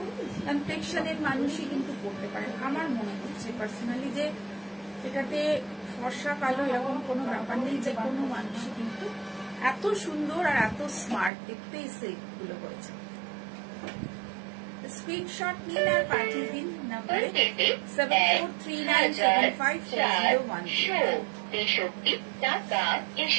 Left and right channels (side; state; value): left; drops out; at 11.3 s